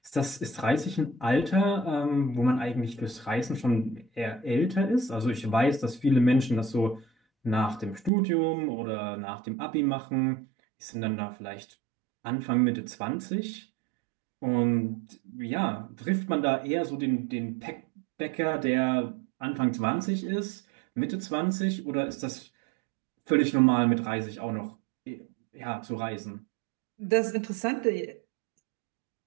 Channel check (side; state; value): left; drops out; at 8.1 s